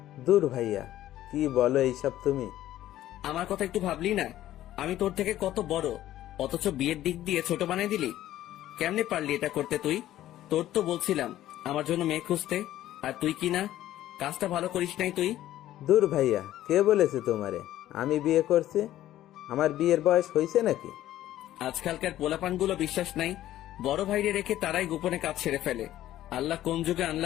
দূর ভাইয়া, কি বলো এইসব তুমি? আমার কথা একটু ভাবলি না? আমি তোর থেকে কত বড়, অথচ বিয়ের দিক দিয়ে ছোট বানিয়ে দিলি। কেমনে পারলি এটা করতে তুই? তোর তো বলছিলাম আমার জন্য মেয়ে খুঁজতে, আর তুই কি না, কাজটা ভালো করিস নাই তুই। দূর ভাইয়া, কে বলেছে তোমারে আমি বিয়ে করছি? আমার বিয়ের বয়স হয়েছে নাকি? আজকালকার পোলাপানগুলো বিশ্বাস নাই, বড় ভাইরে রেখে তারাই গোপনে কাজ সেরে ফেলে। আল্লাহ কোন যুগে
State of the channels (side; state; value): right; quieter; 13.6 dB